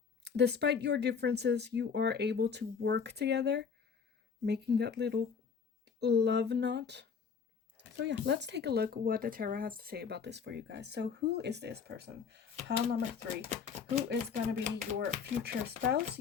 Despite your differences, you are able to work together, making that little love knot. So yeah, let's take a look what the tarot has to say about this for you guys. So who is this person? Pile number 3. Who is going to be your future spouse,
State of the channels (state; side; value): quieter; right; 6.1 dB